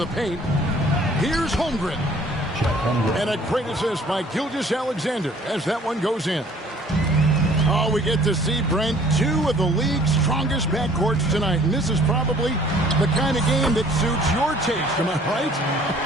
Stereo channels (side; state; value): both; normal; correlation 0.55